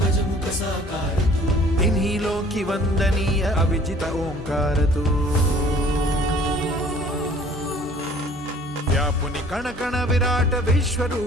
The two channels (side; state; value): both; normal; correlation 0.52